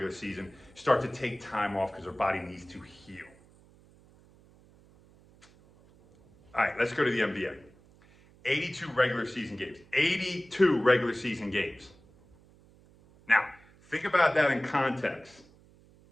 season start to take time off because their body needs to heal. All right, let's go to the NBA. 82 regular season games. 82 regular season games. Now, think about that in context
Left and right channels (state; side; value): noise; right; hum, 27 dB below the sound